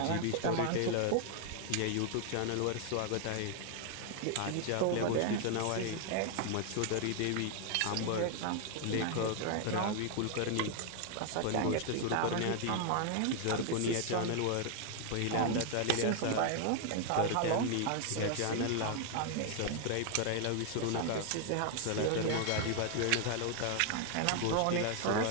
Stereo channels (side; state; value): both; different; correlation 0.00